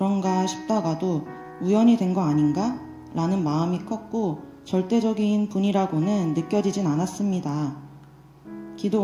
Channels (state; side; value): identical; both; correlation 1.00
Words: 싶다가도 우연이 된 거 아닌가? 라는 마음이 컸고 절대적인 분이라고는 느껴지진 않았습니다. 기도